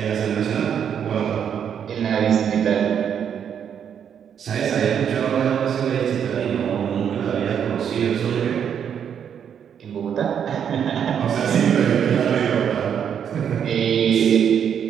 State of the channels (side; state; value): left; quieter; 8.3 dB